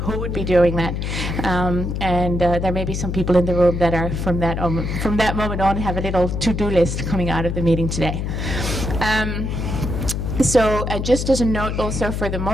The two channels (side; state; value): left; noise; hum, 2 dB below the sound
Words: would be doing that. And there may be some people in the room that are from that moment on have a little to-do list coming out of the meeting today. So just as a note also for the